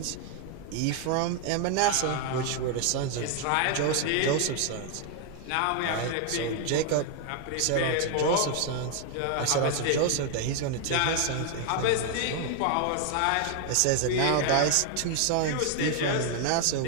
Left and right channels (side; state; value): both; different; correlation 0.00